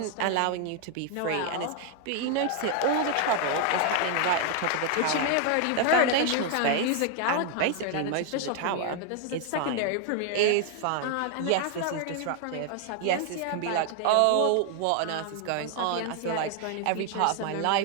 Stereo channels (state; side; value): different; both; correlation 0.00